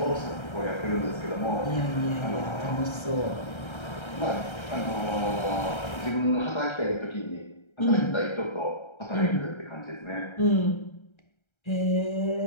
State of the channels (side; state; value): right; late; 1.3 ms